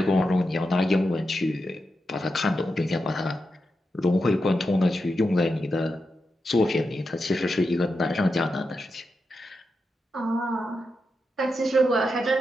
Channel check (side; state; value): both; normal; correlation 0.87